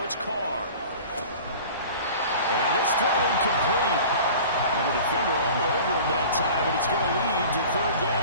it's Carr. And this throw incomplete. And the defender all over him that time, and it's going to lead to 3rd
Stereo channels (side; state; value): both; inverted; correlation -0.42